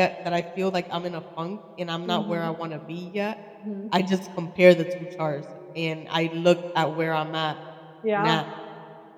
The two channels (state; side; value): identical; both; correlation 1.00